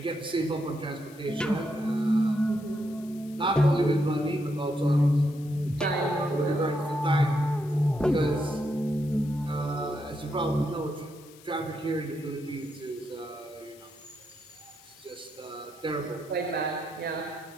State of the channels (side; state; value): left; noise; hiss, 23 dB below the sound